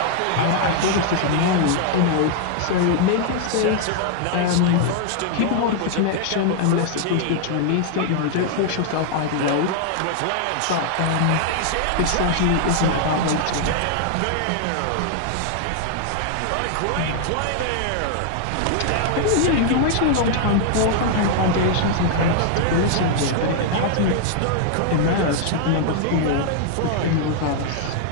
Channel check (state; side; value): different; both; correlation 0.00